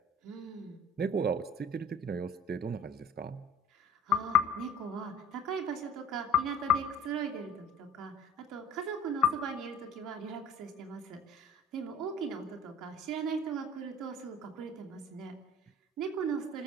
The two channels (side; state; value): both; normal; correlation 0.49